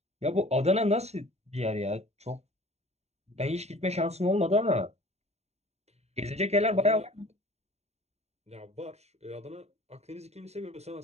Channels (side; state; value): left; late; 0.31 ms